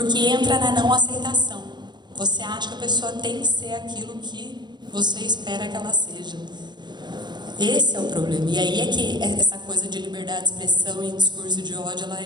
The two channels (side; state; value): left; late; 0.21 ms